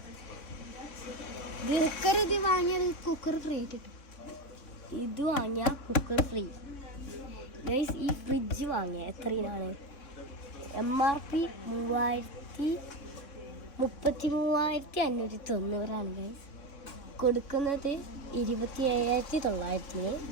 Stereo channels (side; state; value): right; late; 3.6 ms